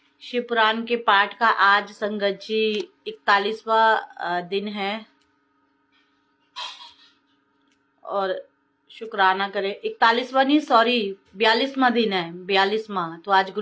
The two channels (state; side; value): identical; both; correlation 1.00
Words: शिव पुराण के पाठ का आज संगत जी 41वां दिन है और शुक्राना करें। 41वां नहीं, सॉरी 42वां दिन है, 42वां। तो आज